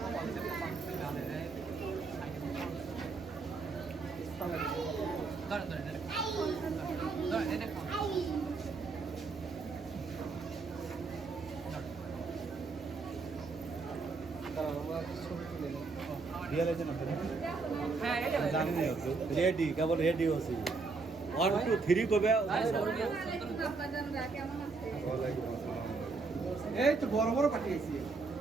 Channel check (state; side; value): quieter; left; 4.2 dB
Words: গাছ রেডি কেবল রেডি হচ্ছে 1 2 3 কবে কেমন আছে এই তো বড় বড় পাঠিয়েছি